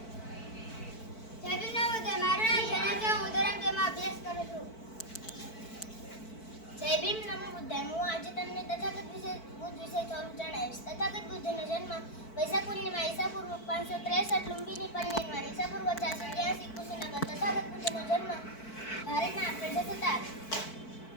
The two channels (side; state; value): right; late; 4.5 ms